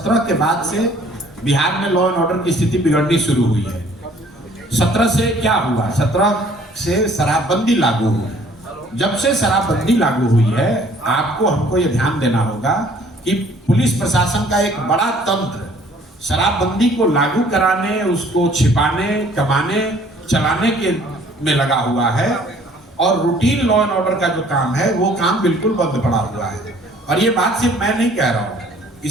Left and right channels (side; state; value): both; normal; correlation 0.56